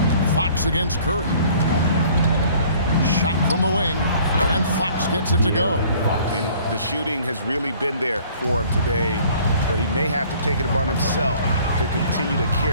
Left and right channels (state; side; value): inverted; both; correlation -0.54